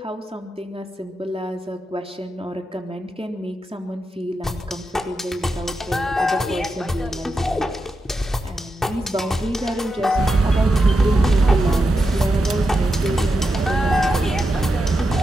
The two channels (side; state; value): both; normal; correlation 0.87